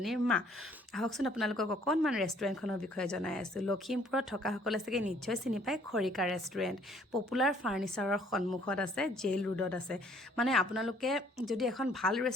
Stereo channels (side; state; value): both; normal; correlation 0.61